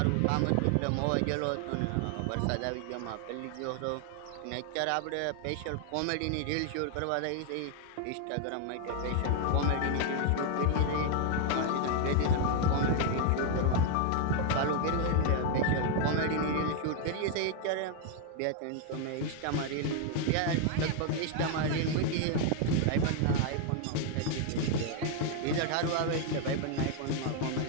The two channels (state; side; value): different; both; correlation 0.00